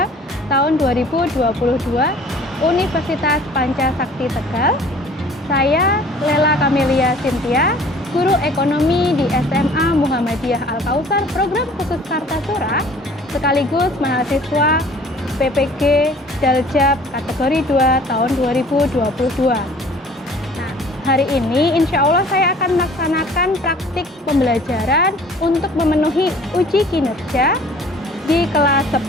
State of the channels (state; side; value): normal; both; correlation 0.50